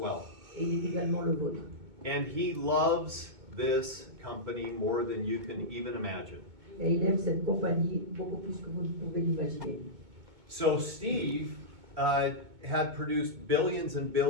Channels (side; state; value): left; late; 2.2 ms